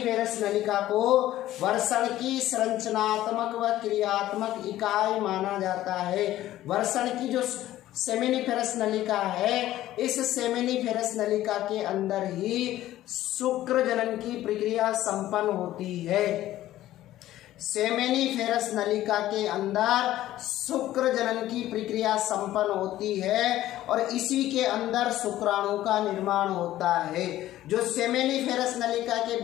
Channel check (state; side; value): quieter; right; 14.3 dB